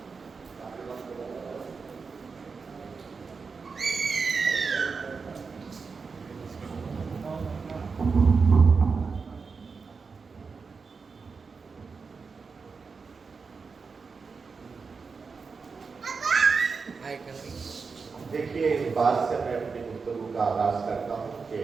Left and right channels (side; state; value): left; quieter; 5.0 dB